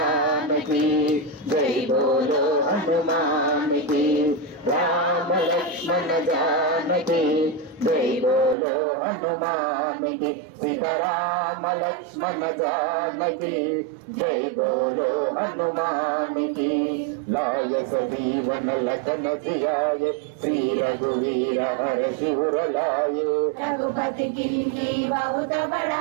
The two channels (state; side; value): drops out; left; at 8.6 s